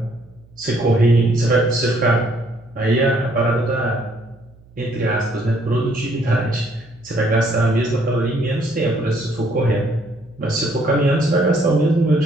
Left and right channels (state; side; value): noise; right; hum, 27 dB below the sound